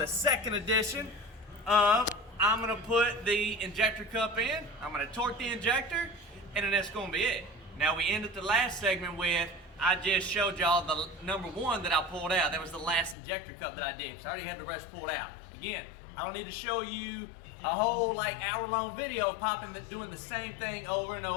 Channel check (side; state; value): right; drops out; at 13.2 s